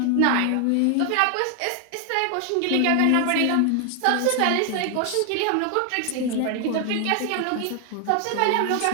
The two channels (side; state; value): both; different; correlation 0.00